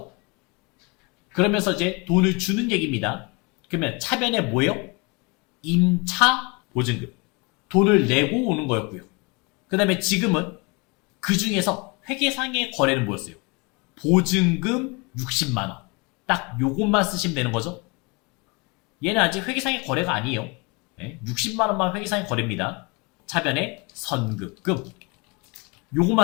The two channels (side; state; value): right; quieter; 28.8 dB